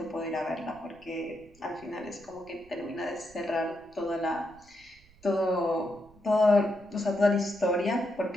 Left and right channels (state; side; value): noise; right; rumble, 27 dB below the sound